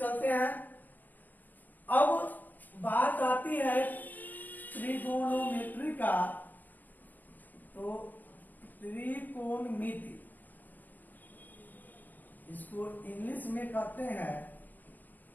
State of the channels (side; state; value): right; late; 0.085 ms